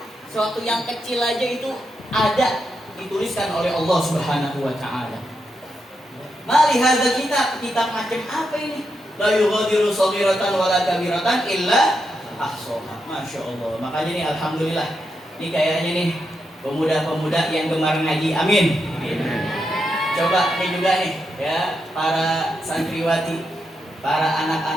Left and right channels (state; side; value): normal; both; correlation 0.84